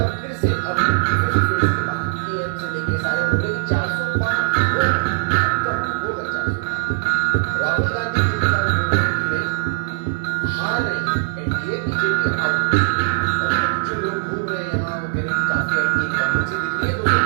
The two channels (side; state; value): left; silent; digital silence